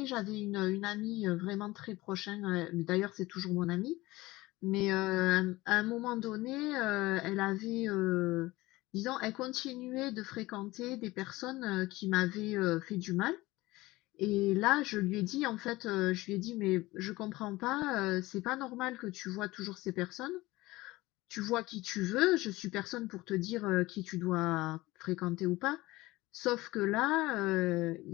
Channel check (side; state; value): right; quieter; 19.5 dB